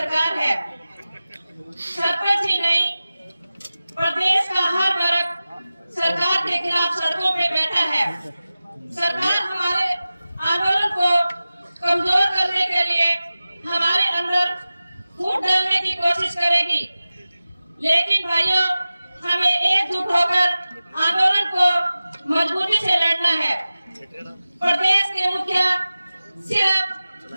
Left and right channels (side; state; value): both; inverted; correlation -0.96